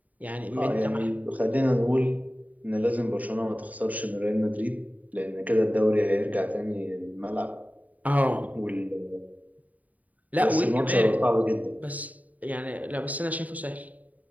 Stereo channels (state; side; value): late; left; 0.073 ms